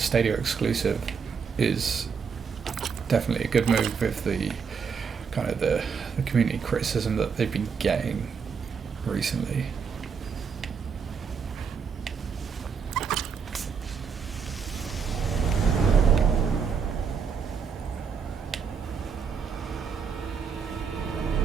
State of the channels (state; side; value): quieter; left; 6.1 dB